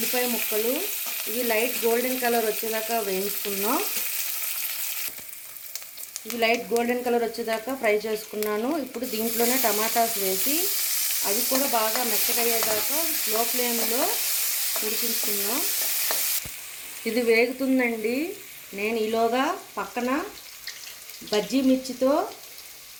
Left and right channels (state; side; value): identical; both; correlation 1.00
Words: ముక్కలు ఇవి లైట్ గోల్డెన్ కలర్ వచ్చేదాకా వేయించుకున్నాం. ఇవి లైట్ గోల్డెన్ కలర్ వచ్చేదాకా ఫ్రై చేసుకున్నాను. ఇప్పుడు దీంట్లోనే టమాటాస్ వేసి అవి కూడా బాగా మెత్తగా అయ్యేదాకా స్లో ఫ్లేమ్లో ఉడికించుకున్నాం. ఇది వేగుతుందండి. నేను ఈలోగా పక్కన బజ్జీ మిర్చితో